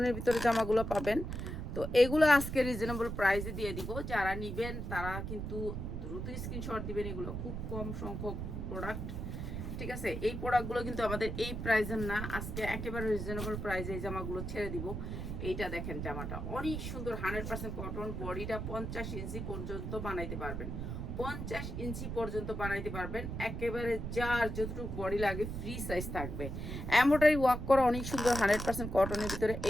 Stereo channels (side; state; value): right; noise; rumble, 5 dB below the sound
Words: ভিতরে জামাগুলো পাবেন। তো এগুলো আজকে রিজনেবল প্রাইসে দিয়ে দিব। যারা নেবেন তারা কিন্তু দ্রুত স্ক্রিনশট দিবেন। এগুলো খুব কম সংখ্যক প্রোডাক্ট, ঠিক আছে। এই প্রোডাক্টগুলো কিন্তু আমাদের এই প্রাইসের না, আজকে একেবারে রিজনেবল প্রাইসে এই জামাগুলো ছেড়ে দিব। এইটা দেখেন, জামাটা অনেক সুন্দর, 100% কটন, বডিটা 50 ইঞ্চি পর্যন্ত বানাইতে পারবেন। 50 ইঞ্চি পর্যন্ত বানাইতে পারবেন, একেবারে যার যতটুকু বডি লাগে ফ্রি সাইজ থাকবে। এমব্রয়ডারি ওয়ার্ক করা অনেক সুন্দর 100% কটনের ভিতরে।